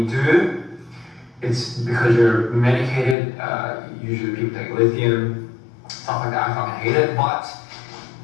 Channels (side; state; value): right; drops out; at 3.2 s